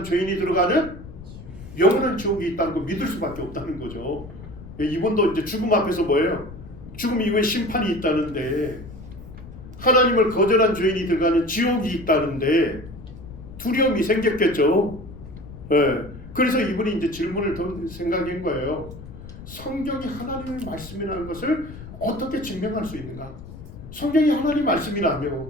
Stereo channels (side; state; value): left; noise; rumble, 15 dB below the sound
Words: 죄인이 들어가는 영원한 지옥이 있다는 거 믿을 수밖에 없다는 거죠. 이분도 이제 죽음 앞에서 뭐예요? 죽음 이후에 심판이 있다는데, 하나님을 거절한 죄인이 들어가는 지옥이 있다는데 두려움이 생겼겠죠. 그래서 이분이 이제 질문을 던 생각인 거예요. 성경이 하나님의 말씀이라는 것을 어떻게 증명할 수 있는가? 성경이 하나님